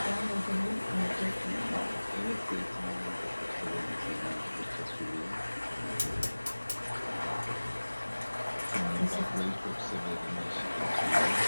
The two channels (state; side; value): inverted; both; correlation -1.00